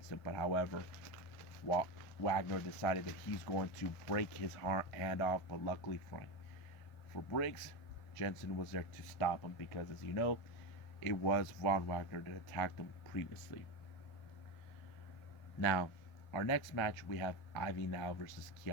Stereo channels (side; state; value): right; late; 1.4 ms